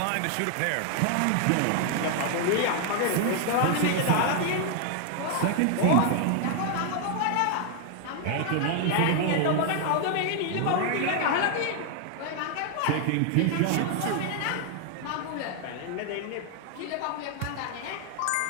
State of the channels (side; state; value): both; different; correlation 0.00